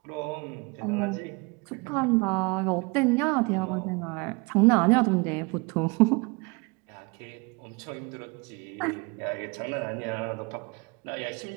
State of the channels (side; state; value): left; quieter; 28.3 dB